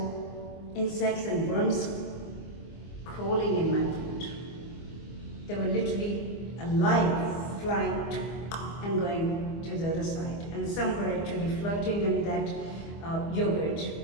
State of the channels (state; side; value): late; right; 24 ms